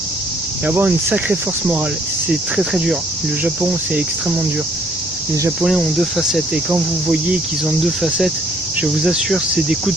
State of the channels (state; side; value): noise; left; hum, 29 dB below the sound